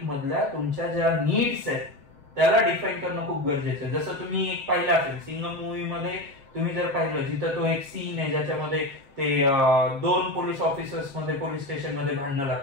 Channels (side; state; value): left; late; 7.1 ms